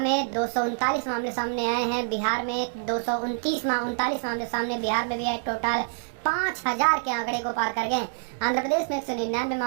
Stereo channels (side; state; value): left; silent; digital silence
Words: 239 मामले सामने आए हैं। बिहार में 239 मामले सामने, बिहार में भी आए, टोटल 5,000 के आंकड़े को पार कर गए। आंध्र प्रदेश में 199